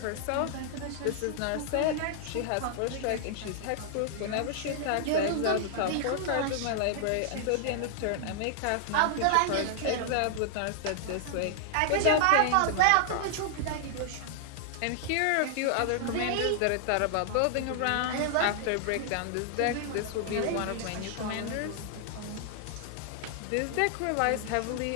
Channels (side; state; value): both; different; correlation 0.00